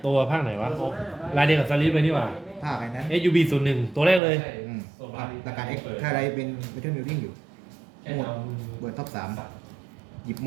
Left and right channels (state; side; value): drops out; left; at 4.2 s